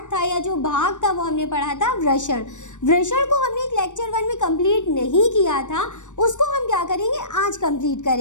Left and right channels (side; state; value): right; late; 0.85 ms